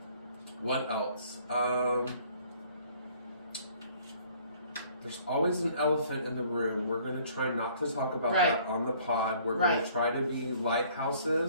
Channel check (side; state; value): both; inverted; correlation -0.58